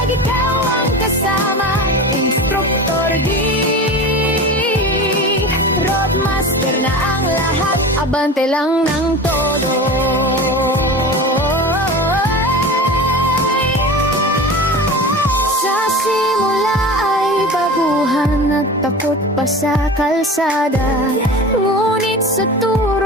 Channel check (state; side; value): normal; both; correlation 0.32